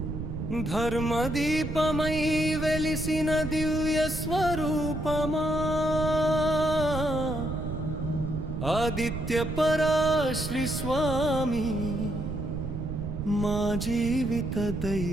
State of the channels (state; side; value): noise; right; rumble, 5 dB below the sound